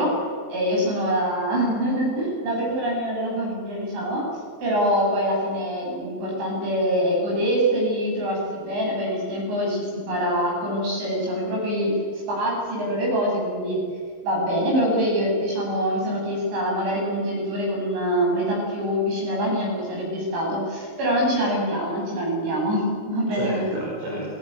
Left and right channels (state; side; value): late; left; 19 ms